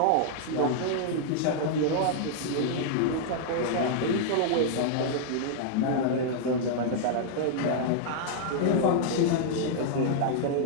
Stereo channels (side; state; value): both; different; correlation -0.01